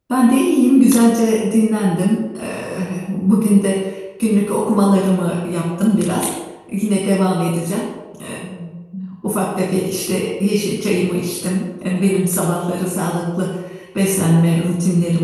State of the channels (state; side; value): identical; both; correlation 1.00